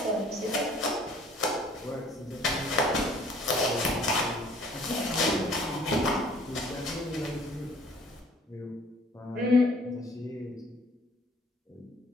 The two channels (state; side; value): normal; both; correlation 0.55